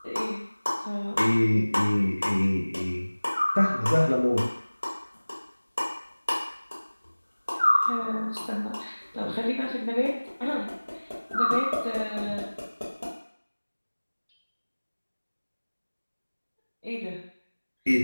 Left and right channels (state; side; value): inverted; both; correlation -1.00